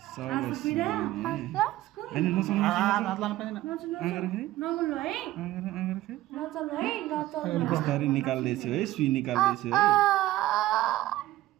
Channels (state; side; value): quieter; left; 15.7 dB